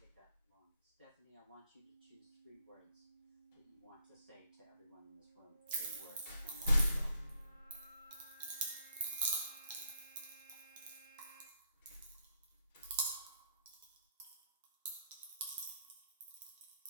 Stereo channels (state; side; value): inverted; both; correlation -0.72